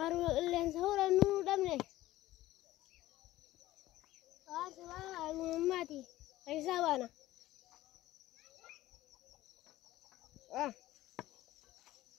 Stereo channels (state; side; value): quieter; right; 16.0 dB